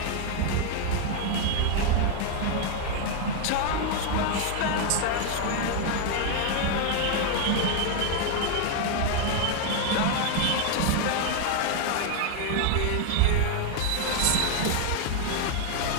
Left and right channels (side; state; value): both; different; correlation 0.00